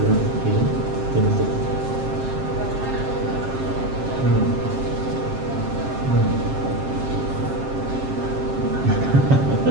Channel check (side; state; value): left; late; 7.5 ms